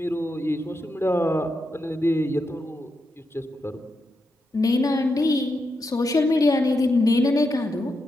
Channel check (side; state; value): both; normal; correlation 0.85